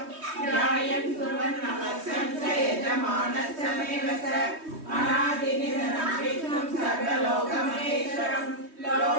ध्यायन् कुर्वन् नमस्यं स यजमानश्च मेव स अनादिनिधनं विष्णुं सर्वलोकमहेश्वरं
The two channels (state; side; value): late; left; 3.2 ms